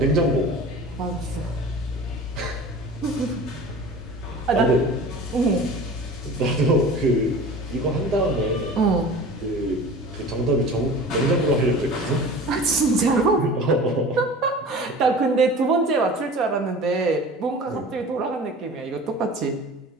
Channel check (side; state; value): both; normal; correlation 0.39